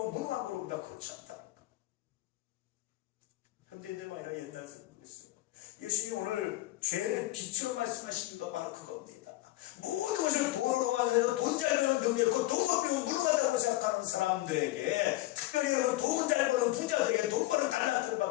무능한 거로 봅니다. 그렇지 않다는 거. 현대인들만 아니라 옛날 사람도 그랬어요. 예수님이 오늘 죄를 빛으로 말씀하신 이유가 바로 그겁니다. 모든 것을 돈으로 완성해서 돈 잘 버는 능력 있고 돈 못 벌면 무능하다고 생각하는 사람들에게, 특별히 여러분 돈 잘 버는 부자들에게, 돈 버는 달란트를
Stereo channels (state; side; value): quieter; right; 17.9 dB